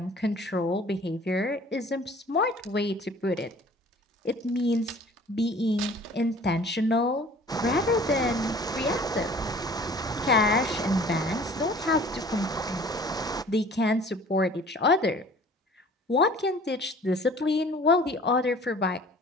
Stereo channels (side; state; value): both; normal; correlation 0.49